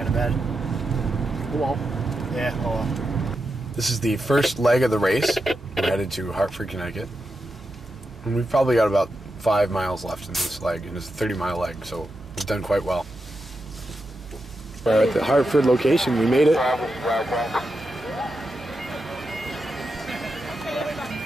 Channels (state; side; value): normal; both; correlation 0.87